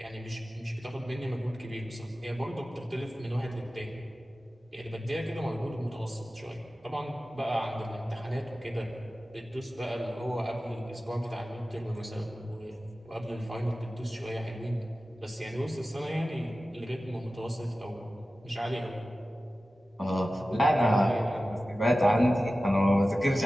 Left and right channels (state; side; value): normal; both; correlation 0.95